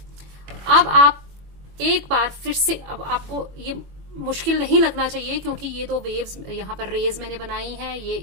अब आप एक बार फिर से, अब आपको ये मुश्किल नहीं लगना चाहिए क्योंकि ये दो वेव्स यहाँ पर रेज मैंने बनाई हैं, ये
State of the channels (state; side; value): late; left; 21 ms